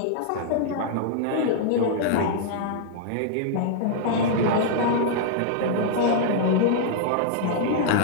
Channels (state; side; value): different; both; correlation -0.01